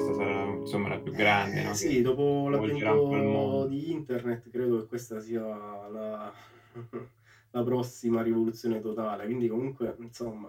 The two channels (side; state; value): both; identical; correlation 1.00